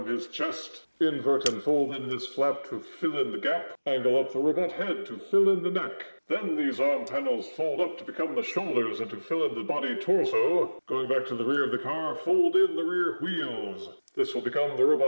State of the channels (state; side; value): inverted; both; correlation -1.00